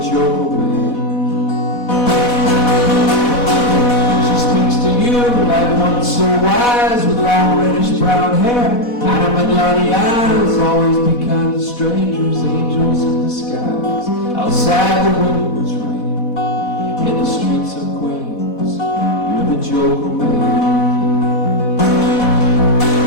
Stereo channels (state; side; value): late; right; 4.1 ms